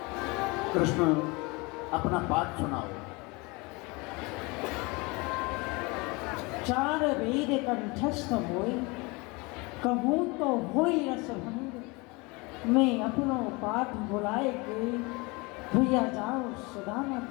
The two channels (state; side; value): quieter; right; 26.3 dB